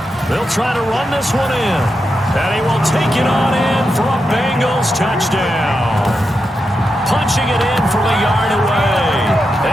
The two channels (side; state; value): both; normal; correlation 0.87